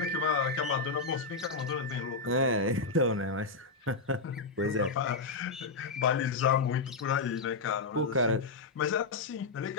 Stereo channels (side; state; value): right; quieter; 4.0 dB